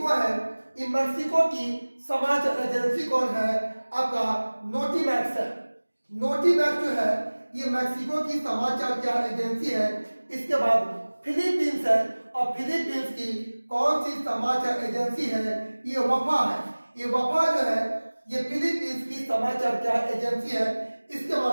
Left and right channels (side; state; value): both; inverted; correlation -1.00